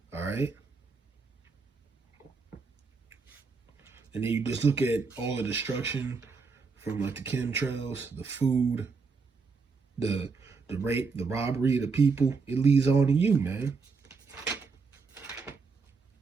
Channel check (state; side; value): quieter; left; 4.7 dB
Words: All right. And then you just look at all the destruction from like the chemtrails, the food, the rape, the robbery of the people. It leads on to you, man.